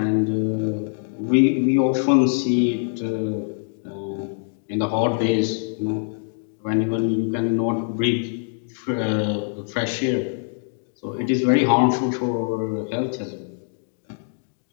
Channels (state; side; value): silent; right; digital silence